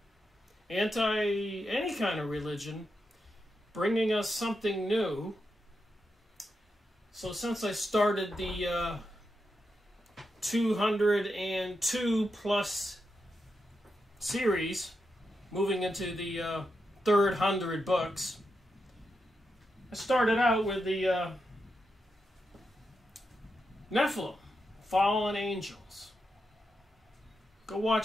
anti-any kind of religion, bringing us something new. So since I started the 202 plus series, moving into the third 100 books, I started out with the Nephilim, fallen angels. Go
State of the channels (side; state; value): both; normal; correlation 0.86